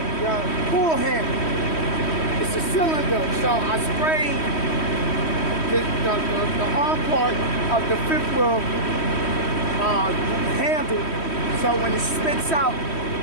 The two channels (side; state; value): right; late; 3.1 ms